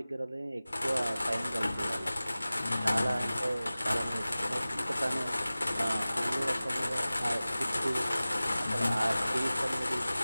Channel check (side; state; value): both; inverted; correlation -0.97